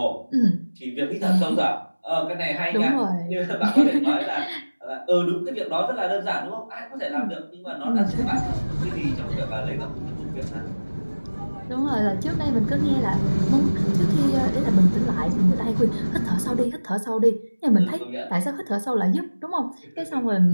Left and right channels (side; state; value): both; inverted; correlation -1.00